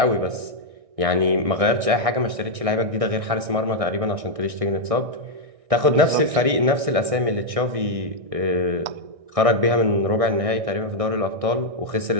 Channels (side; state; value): left; late; 1.6 ms